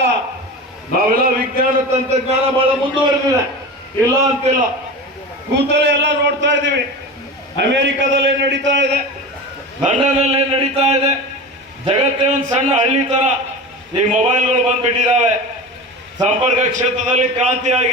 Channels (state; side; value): normal; both; correlation 0.30